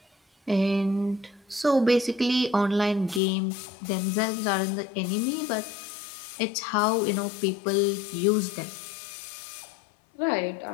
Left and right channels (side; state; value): right; drops out; at 3.2 s